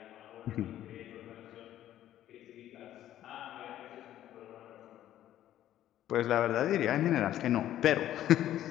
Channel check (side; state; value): right; quieter; 12.4 dB